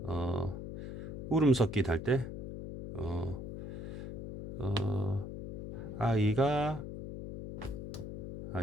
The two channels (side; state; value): left; noise; hum, 7 dB below the sound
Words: 울음 섞기 할 때 아이가